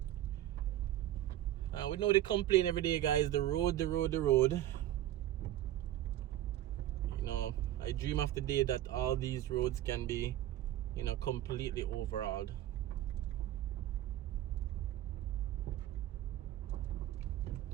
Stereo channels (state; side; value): quieter; left; 13.1 dB